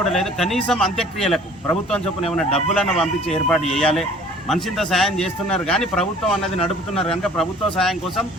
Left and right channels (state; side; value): normal; both; correlation 0.50